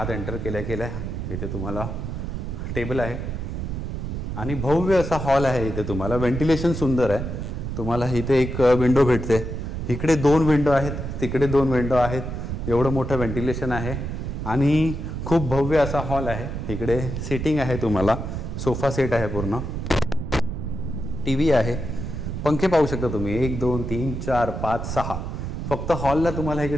एंटर केल्या केल्या इथे तुम्हाला टेबल आहे, आणि भव्य असा हॉल आहे. इथे तुम्हाला व्हेंटिलेशन सुंदर आहे. तुम्हाला इथे एक विंडो भेटते, इकडे 2 विंडो आहेत, तिकडे 2 विंडो आहेत. एवढं मोठं व्हेंटिलेशन आहे, आणि खूप भव्य असा हॉल आहे. इकडे सिटिंग आहे, तुम्हाला सोफा सेट आहे, पूर्ण TV आहे, पंखे पाहू शकता तुम्ही. 1 2 3 4 5 6, फक्त हॉलला तुम्हाला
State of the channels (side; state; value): right; noise; rumble, 4 dB below the sound